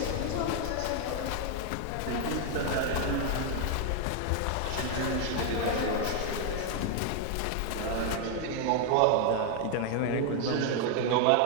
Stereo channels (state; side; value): different; both; correlation 0.00